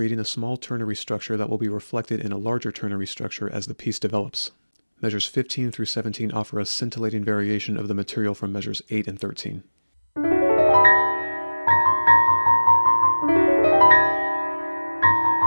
a small ternary structure that will be reflected in a larger ternary structure as the piece develops. Measures 15 through 17 offer a scintillating variation of the material from measures 8 and 13.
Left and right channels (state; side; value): inverted; both; correlation -1.00